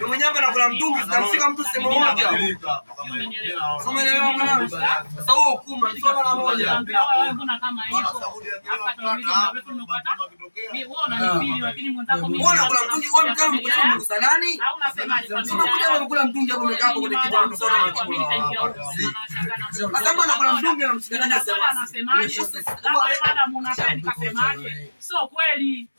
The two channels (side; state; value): both; inverted; correlation -1.00